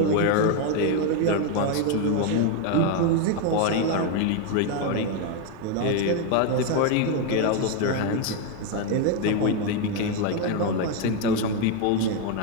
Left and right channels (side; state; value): both; different; correlation 0.01